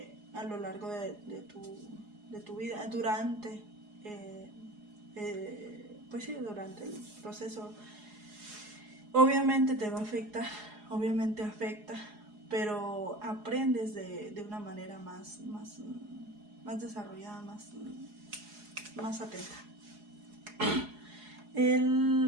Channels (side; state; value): left; late; 4.8 ms